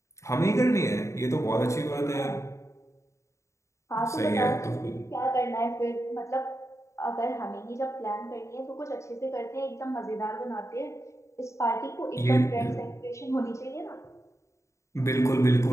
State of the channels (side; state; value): right; late; 0.14 ms